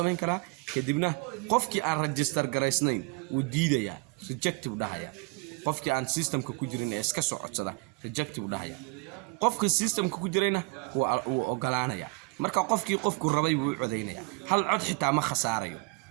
karaa kadibna qofkii aan register gareysnayn uu diidaya rejective dhahaya qofkii aan systemka ku jirin ee iska soo codsada rejective dhahaya qofka systemka ku jirayna uu ogolaanaya marka qofku rabay wuu codeynaya hal cod xitaa ma khasaarayo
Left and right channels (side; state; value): left; quieter; 29.9 dB